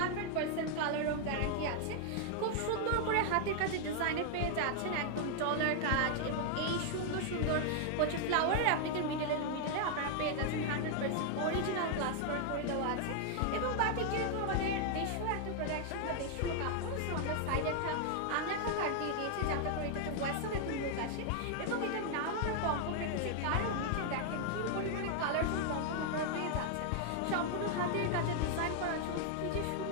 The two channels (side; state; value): both; different; correlation 0.00